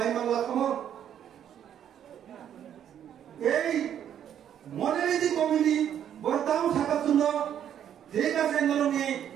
मांगला खामो এই মডেলিটি কমিটি বর্তাও সাকাতুন যেটা সেন্ডলনি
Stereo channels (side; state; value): left; quieter; 9.7 dB